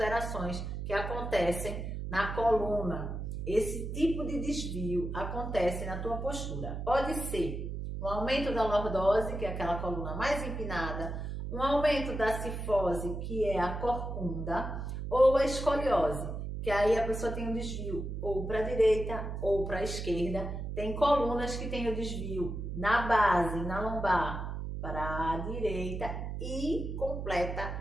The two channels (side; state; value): right; noise; hum, 5 dB below the sound